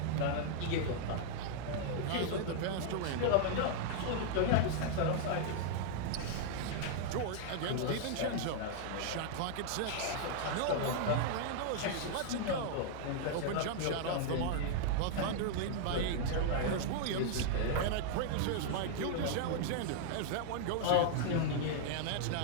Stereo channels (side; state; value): both; different; correlation -0.01